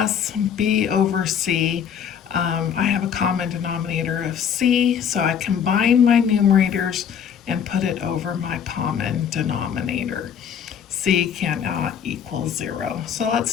B over C, I have a common denominator of C, so I combine my numerators and put it over my common denominator. C cannot equal 0. So let's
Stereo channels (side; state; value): right; quieter; 8.0 dB